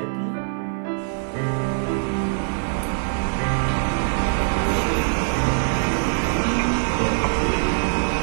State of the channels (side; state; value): left; silent; digital silence